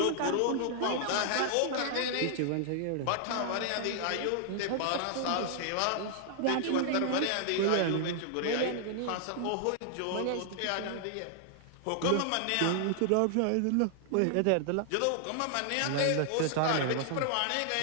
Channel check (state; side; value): different; both; correlation -0.01